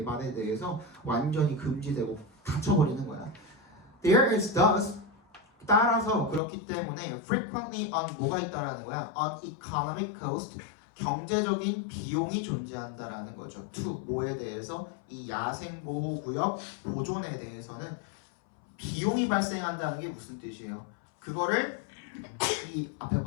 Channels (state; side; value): drops out; right; at 6.4 s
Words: 대해서 완전히 금지되고 닫혀버리는 거야. There is thus 따라서 그렇기 때문에 frequently on 뭐가 있다라는 거야? On economic cost 경제적인 비용이 존재한다라는 거죠. to 뭐에 대해서? 이 야생보호구역 보존에 대해서는 비용이 발생한다는 게 무슨 뜻이에요? 그거를 이 앞에